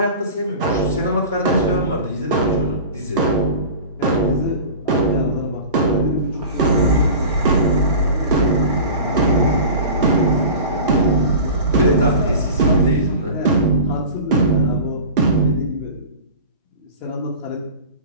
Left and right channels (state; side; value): inverted; both; correlation -0.35